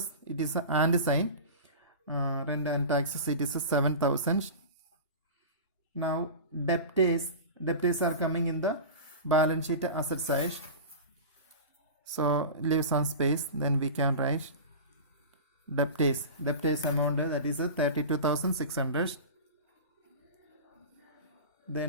it is a and sign. Rent and taxes, it is a 7,000. Now debtors are coming in the balance sheet asset side. So leave some space, then we can write debtors amount, that is a 32,600.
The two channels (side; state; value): both; inverted; correlation -0.31